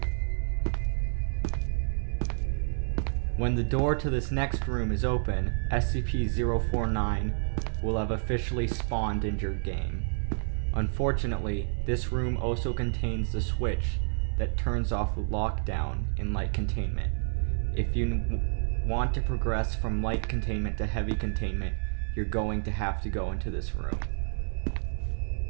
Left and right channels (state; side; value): silent; left; 58 dB below the other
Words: When the door to this next room is open, SCP-049 will have officially spawned in your game. Unfortunately, this room also contains the switch that turns off lockdown in light containment. If you want to progress from light containment to heavy containment, you're going to have to go into this room.